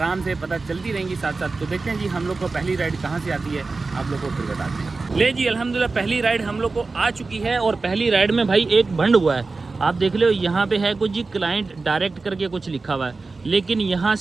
से पता चलती रहेंगी साथ साथ। तो देखते हैं जी हम लोग को पहली राइड कहाँ से आती है, आप लोग को फिर बताते हैं। ले जी अल्हम्दुलिल्लाह पहली राइड हम लोग को आ चुकी है और पहली राइड में भाई एक भंड हुआ है। आप देख लो यहाँ पे है कुछ जी क्लाइंट डायरेक्ट करके कुछ लिखा हुआ है, लेकिन यहाँ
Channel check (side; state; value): left; quieter; 3.9 dB